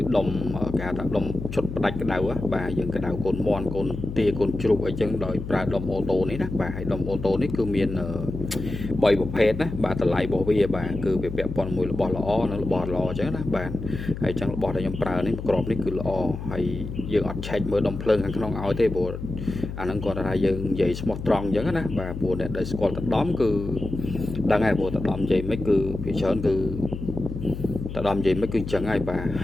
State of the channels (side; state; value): left; noise; hum, 8 dB below the sound